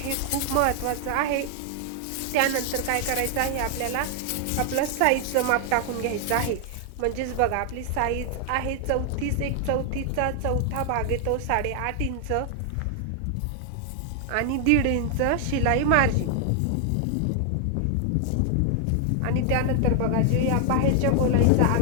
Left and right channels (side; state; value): both; different; correlation 0.00